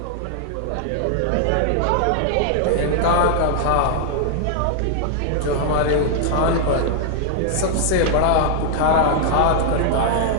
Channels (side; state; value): both; different; correlation -0.01